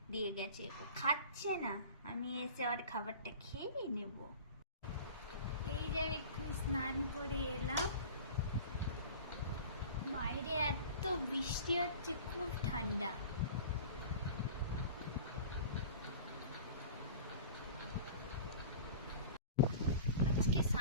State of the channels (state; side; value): inverted; both; correlation -0.39